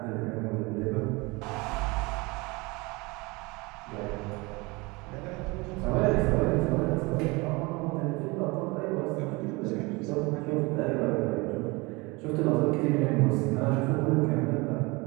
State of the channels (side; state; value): left; quieter; 25.3 dB